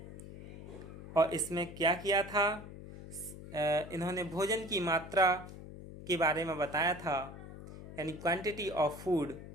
और इसमें क्या किया था, इन्होंने भोजन की मात्रा के बारे में बताया था यानी क्वांटिटी ऑफ फूड।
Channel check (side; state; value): left; noise; hum, 13 dB below the sound